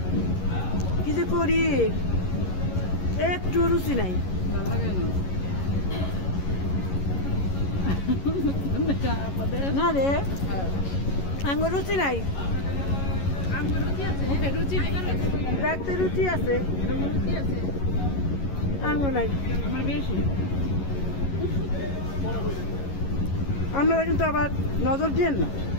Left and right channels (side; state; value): right; late; 11 ms